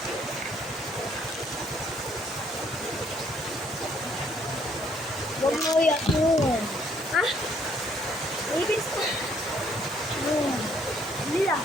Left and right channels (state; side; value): normal; both; correlation 0.65